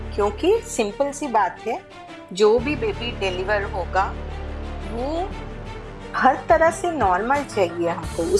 क्योंकि सिंपल सी बात है, जो भी बेबी डिलीवर होगा वो हर तरह से नॉर्मल चाहिए हमको।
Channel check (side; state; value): both; identical; correlation 1.00